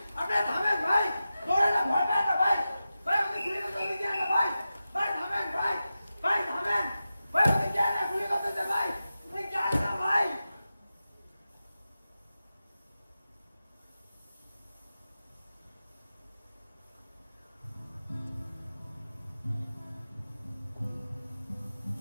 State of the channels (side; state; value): both; inverted; correlation -0.93